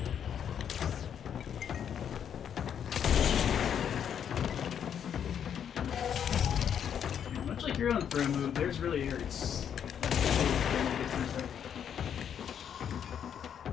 Much like your own throw move, theirs really hurts.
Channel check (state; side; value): quieter; right; 8.6 dB